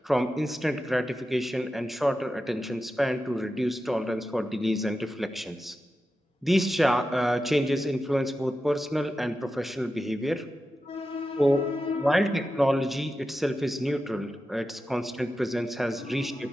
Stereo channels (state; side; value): normal; both; correlation 0.91